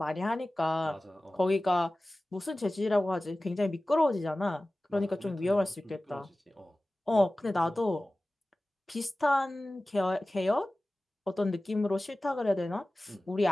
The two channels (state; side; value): normal; both; correlation 0.97